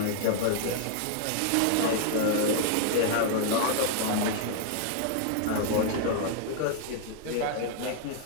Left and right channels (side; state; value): both; different; correlation 0.00